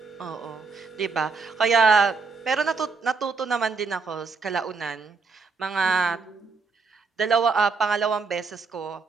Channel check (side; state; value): left; quieter; 4.6 dB